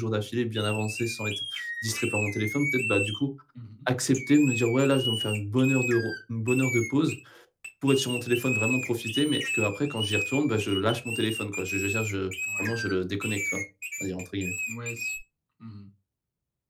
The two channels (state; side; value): identical; both; correlation 1.00